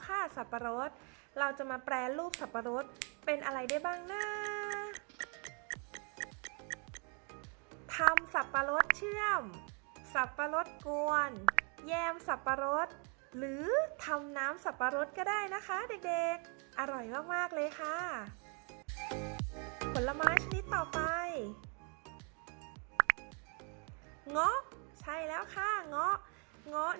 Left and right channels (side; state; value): left; quieter; 37.2 dB